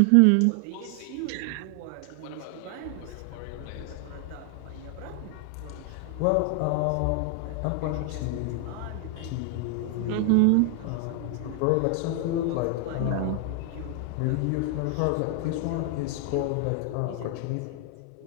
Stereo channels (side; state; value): both; different; correlation 0.00